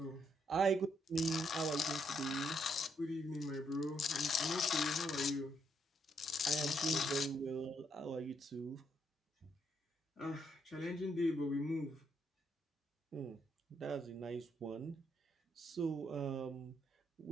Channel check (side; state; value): both; normal; correlation 0.75